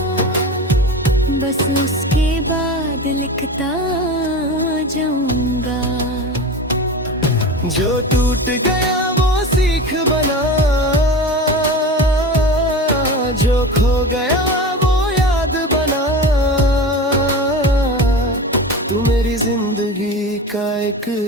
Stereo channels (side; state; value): both; normal; correlation 0.30